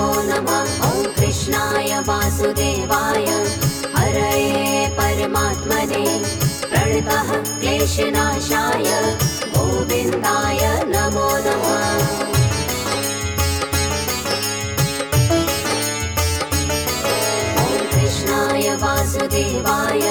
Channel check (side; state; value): both; identical; correlation 1.00